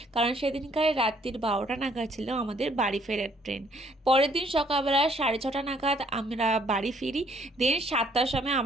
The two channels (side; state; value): both; normal; correlation 0.64